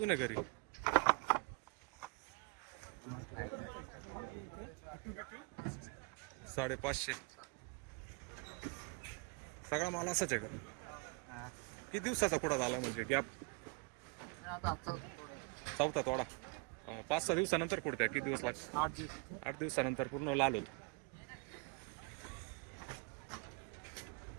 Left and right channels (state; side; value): quieter; left; 30.0 dB